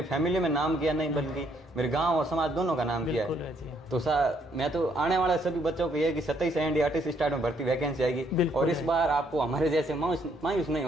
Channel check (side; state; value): both; normal; correlation 0.70